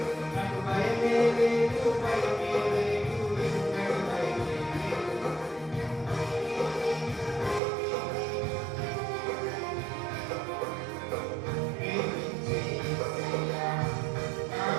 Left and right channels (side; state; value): left; drops out; at 7.6 s